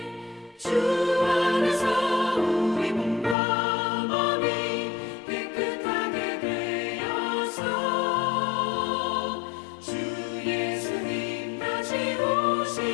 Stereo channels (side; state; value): right; drops out; at 3.4 s